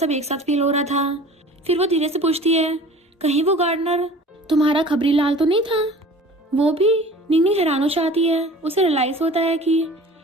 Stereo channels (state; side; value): normal; both; correlation 0.43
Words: एक साथ फील हो रहा था। फिर वो धीरे से पूछती है कहीं वो गार्डनर तुम्हारा खबरी लाल तो नहीं था। वो भी। निंगनिंग हैरान हो जाती है। उसे रियलाइज होता है कि